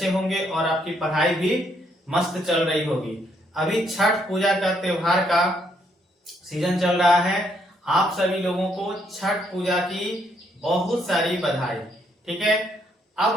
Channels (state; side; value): normal; both; correlation 0.72